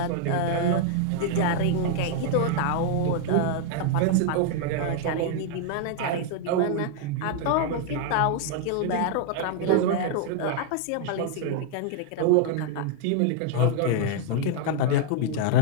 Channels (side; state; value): both; different; correlation 0.00